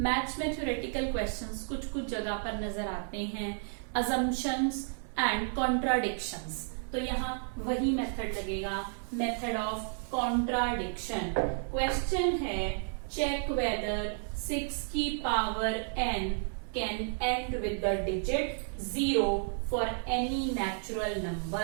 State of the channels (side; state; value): left; silent; 56 dB below the other